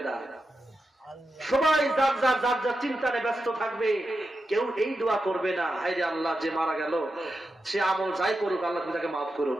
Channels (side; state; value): both; normal; correlation 0.89